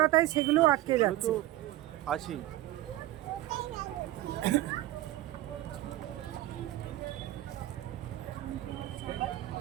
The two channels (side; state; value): left; quieter; 15.5 dB